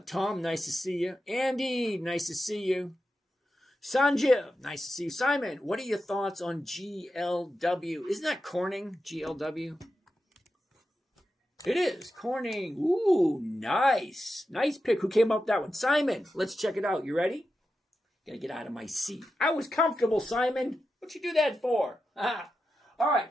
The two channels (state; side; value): normal; both; correlation 0.90